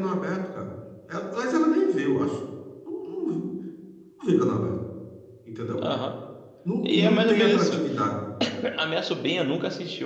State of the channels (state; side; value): identical; both; correlation 1.00